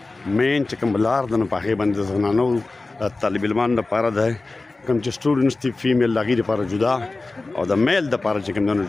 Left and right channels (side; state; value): right; quieter; 3.4 dB